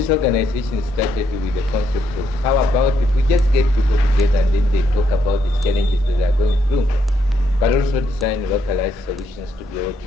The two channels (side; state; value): both; normal; correlation 0.75